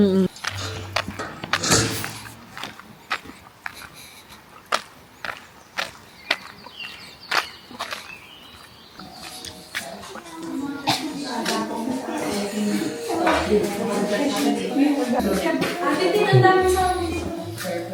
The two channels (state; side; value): identical; both; correlation 1.00